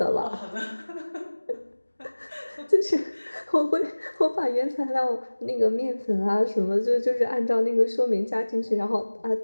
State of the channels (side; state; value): both; inverted; correlation -1.00